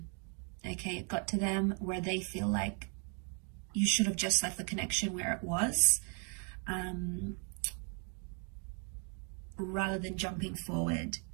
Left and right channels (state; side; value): quieter; left; 39.7 dB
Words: Okay, it got to them where they feel like you should have just left the connection where it was, rather than jumping forward.